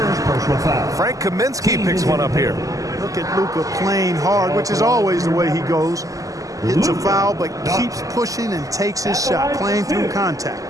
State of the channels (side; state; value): left; late; 0.17 ms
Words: personal foul. Frank Kaminsky picks one up here. Look at Luka playing hard, which is always the way he goes. Hits a foul, but keeps pushing and takes his shot, playing through contact.